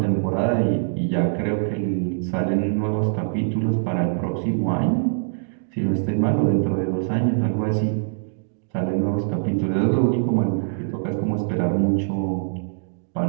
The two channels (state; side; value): silent; left; digital silence